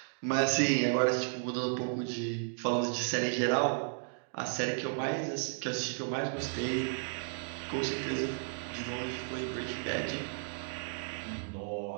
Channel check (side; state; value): left; silent; digital silence